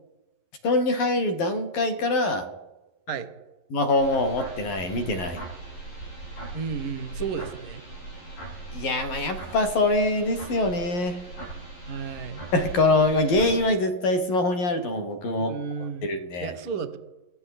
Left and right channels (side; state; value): right; late; 11 ms